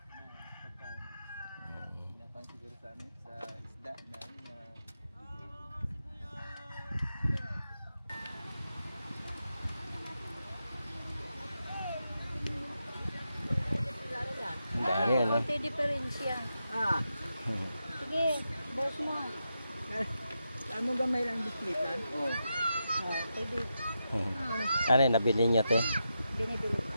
Napan siguro sa amin, sa isda na Ang dami, ano? Konti diferensya. Sige, boss mo. Saan mo gamay lang bislitan? Oo. Pwede. Ano yun, nabili niyo, te? Binibili.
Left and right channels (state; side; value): inverted; both; correlation -0.87